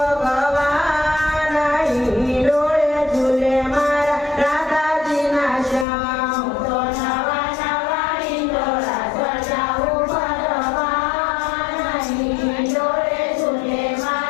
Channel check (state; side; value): drops out; right; at 5.9 s